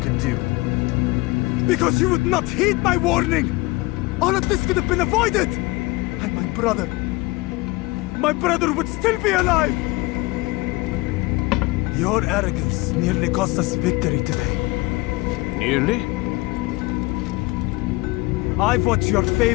do. Because you would not heed my warning! All of this could have been avoided! And my brother would still be alive! Your arrogance nearly cost us victory today. Nearly? I've what your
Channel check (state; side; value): quieter; right; 22.6 dB